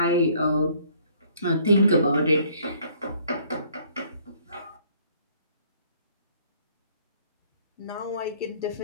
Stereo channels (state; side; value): inverted; both; correlation -0.60